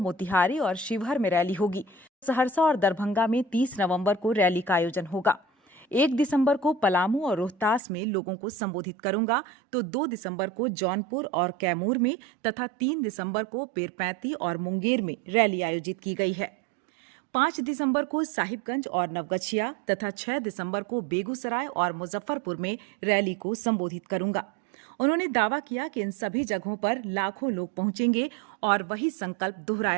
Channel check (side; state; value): left; drops out; at 7.8 s